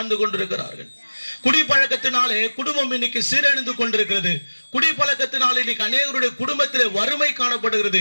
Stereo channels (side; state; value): both; inverted; correlation -1.00